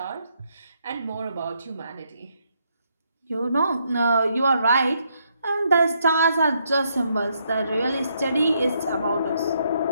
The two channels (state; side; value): inverted; both; correlation -0.75